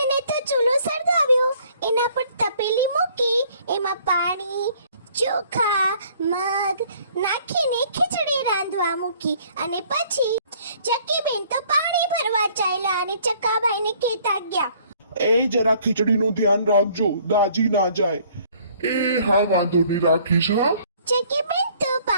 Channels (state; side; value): inverted; both; correlation -0.59